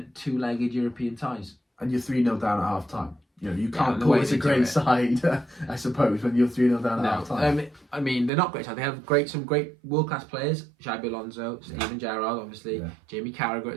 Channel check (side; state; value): left; drops out; at 8.3 s